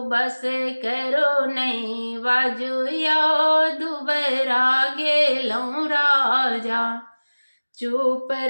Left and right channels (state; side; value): inverted; both; correlation -1.00